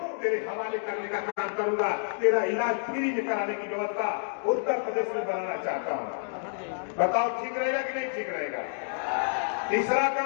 तेरे हवाले करने का काम करूंगा। तेरा इलाज फ्री में कराने की व्यवस्था उत्तर प्रदेश में बनाना चाहता हूं। बताओ ठीक रहेगा कि नहीं ठीक रहेगा। तीसरा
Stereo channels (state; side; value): silent; right; digital silence